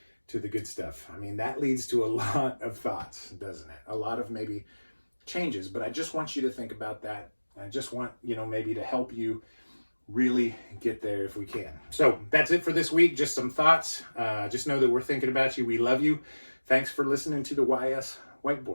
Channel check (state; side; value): inverted; both; correlation -1.00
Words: to the good stuff. I mean, that leads to a lot of thoughts, doesn't it? A lot of maybe changes, but I just want you to think about that. I just want, maybe to help you really get there if we can. So that's it for this week. Just some thoughts. Just know that we're thinking about you. We love you. Thanks for listening to the YS